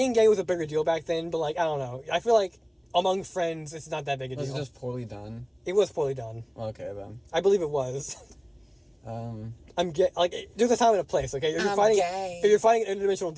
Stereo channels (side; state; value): both; identical; correlation 1.00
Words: gay was a bigger deal back then. But like I don't know, I feel like among friends it's not that big a deal. Was it just poorly done? It was poorly done. Okay then. I believe it was. I'm gay. Like, there's a time and a place, okay? If you're fighting an interdimensional